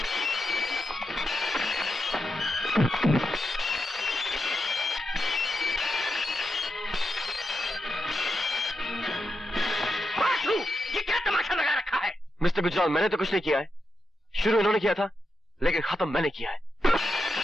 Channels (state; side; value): normal; both; correlation 0.86